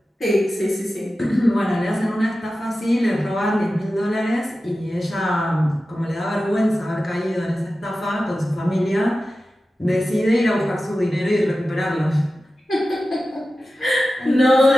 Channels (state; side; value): normal; both; correlation 0.94